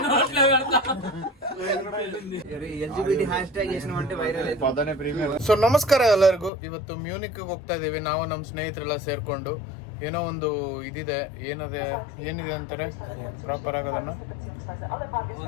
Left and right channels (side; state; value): right; drops out; at 6.5 s